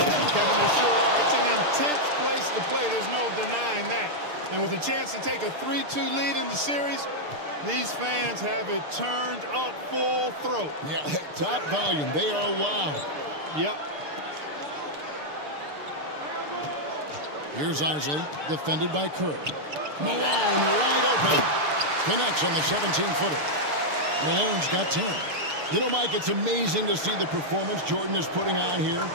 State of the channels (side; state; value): left; late; 6.7 ms